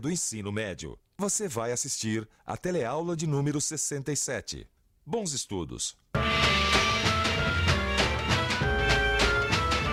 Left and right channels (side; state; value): both; identical; correlation 1.00